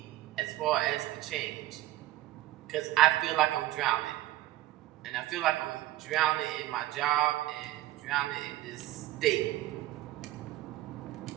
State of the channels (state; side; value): quieter; left; 15.8 dB